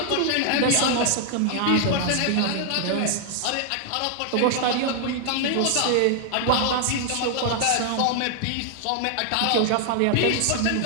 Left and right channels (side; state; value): both; different; correlation 0.00